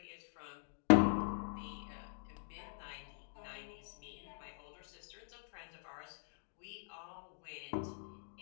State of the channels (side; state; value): right; silent; digital silence